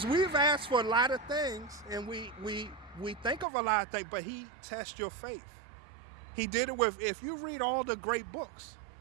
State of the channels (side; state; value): left; drops out; at 3.5 s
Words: we've asked for a lot of things, and we think of a lot of things, but he tests your faith. He did it if you read all the great books,